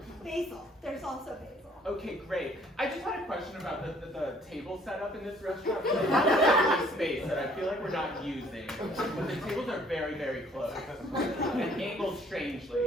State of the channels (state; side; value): normal; both; correlation 0.60